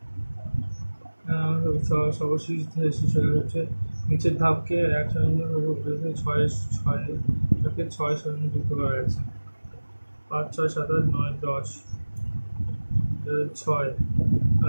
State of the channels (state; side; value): inverted; both; correlation -1.00